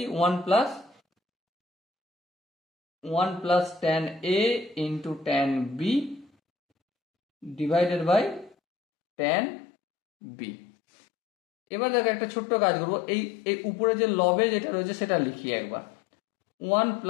1 plus tan a into tan b divided by tan b। এবার দেখো একটা ছোট্ট কাজ করবো, এই উপরে যে লবে যেটা রয়েছে সেটা লিখি একবার, 1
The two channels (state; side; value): drops out; right; at 8.6 s